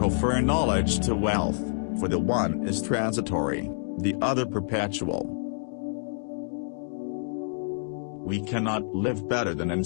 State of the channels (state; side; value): silent; right; digital silence